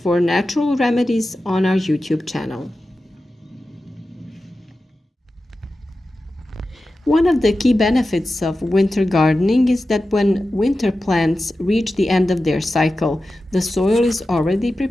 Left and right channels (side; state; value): both; normal; correlation 0.93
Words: natural remedies on our YouTube channel. One of the key benefits of winter gardening is that when winter plants reach the end of their cycle, the soil is already